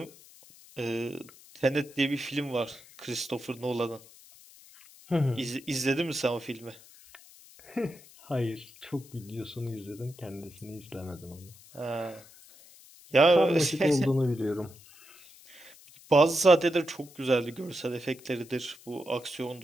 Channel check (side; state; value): left; noise; hiss, 22 dB below the sound